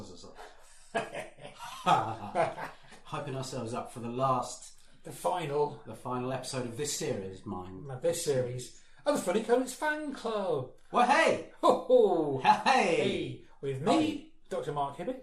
Hyping ourselves up for the final episode of this series, This series of the Funny Comics Fan Club. Well, hey! Ho-ho! Hey! With me, Dr. Mark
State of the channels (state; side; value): identical; both; correlation 1.00